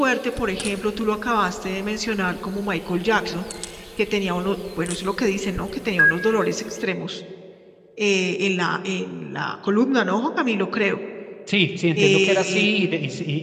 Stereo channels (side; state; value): both; identical; correlation 1.00